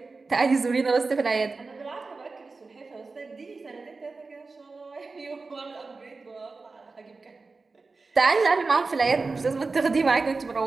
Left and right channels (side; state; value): left; quieter; 4.0 dB